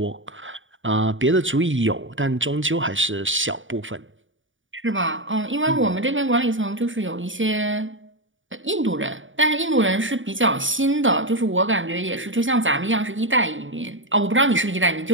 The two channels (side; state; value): left; late; 0.57 ms